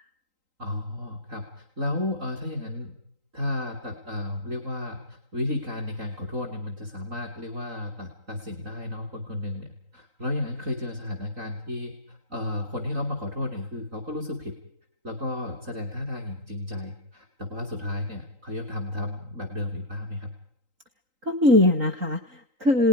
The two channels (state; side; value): late; left; 3.9 ms